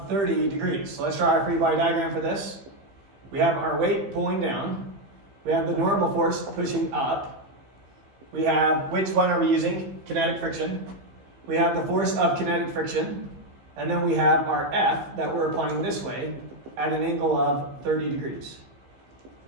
30 degrees. So let's draw our free body diagram for this. We have our weight pulling down. We have the normal force pushing up. We have, which one are we using? Kinetic friction. We have the force of kinetic friction. And then we have our F that we're applying this way at an angle of 30 degrees.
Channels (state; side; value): late; left; 15 ms